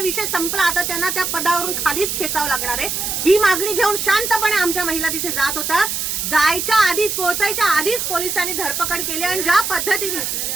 विषय संपला, आता त्यांना त्या पदावरून खालीच खेचावं लागणार आहे. ही मागणी घेऊन शांतपणे आमच्या महिला तिथे जात होता. जायच्या आधीच, पोहोचायच्या आधीच पोलिसांनी धरपकड केली आणि ज्या पद्धतीने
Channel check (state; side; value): noise; right; hiss, 2 dB below the sound